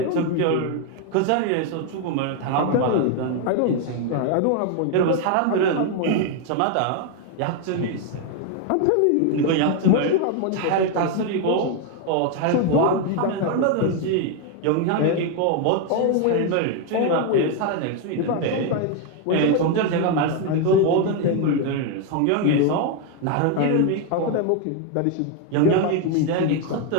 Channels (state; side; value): different; both; correlation 0.01